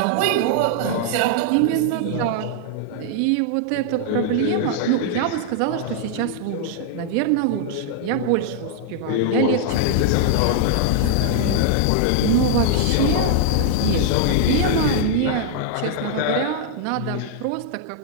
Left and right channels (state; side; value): different; both; correlation -0.01